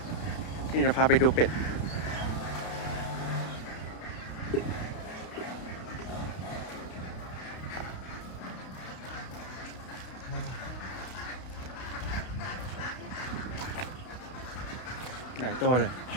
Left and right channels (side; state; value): right; late; 32 ms